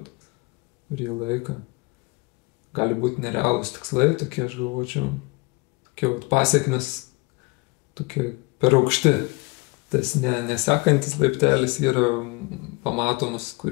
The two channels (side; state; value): right; quieter; 26.4 dB